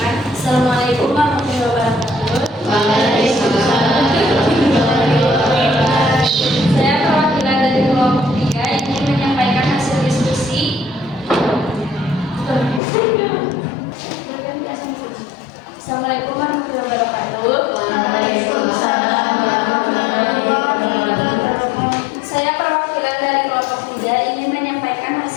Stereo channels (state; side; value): drops out; right; at 12.8 s